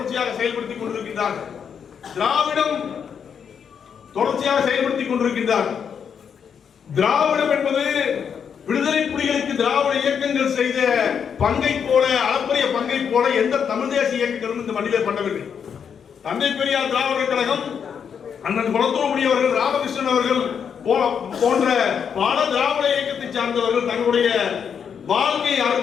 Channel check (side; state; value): right; quieter; 7.3 dB